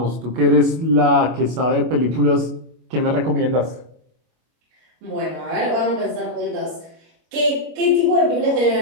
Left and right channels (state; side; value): late; left; 25 ms